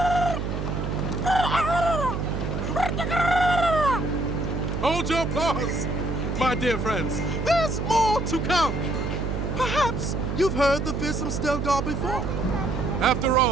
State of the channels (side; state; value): right; noise; hum, 2 dB below the sound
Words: Hold your applause, my dear friends. There's more to come. Perhaps you've heard the fearsome Stelgar before. After